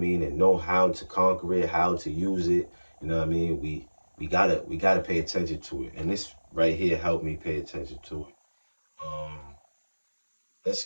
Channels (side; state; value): both; inverted; correlation -1.00